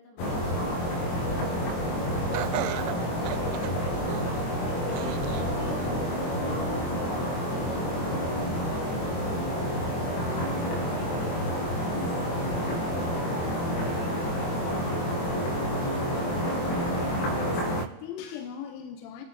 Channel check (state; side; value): late; right; 23 ms